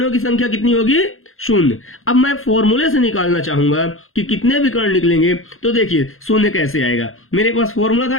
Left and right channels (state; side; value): late; right; 0.61 ms